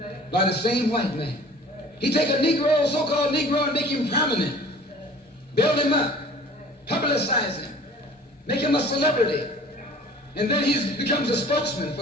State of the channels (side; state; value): both; normal; correlation 0.47